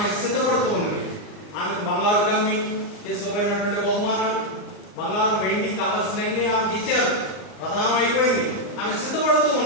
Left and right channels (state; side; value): late; right; 39 ms